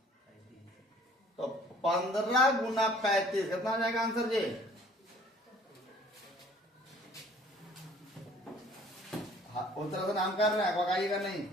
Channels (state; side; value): normal; both; correlation 0.54